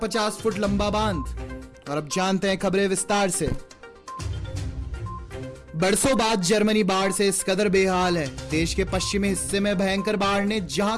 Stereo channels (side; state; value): both; identical; correlation 1.00